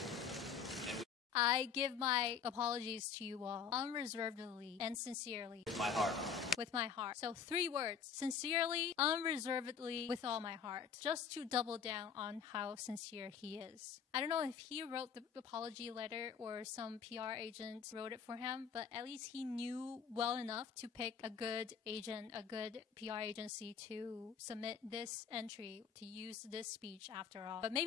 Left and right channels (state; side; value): quieter; right; 6.7 dB